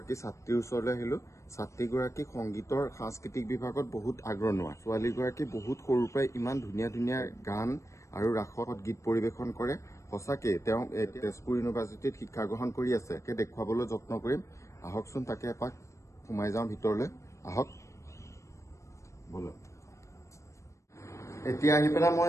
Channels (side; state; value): right; late; 0.15 ms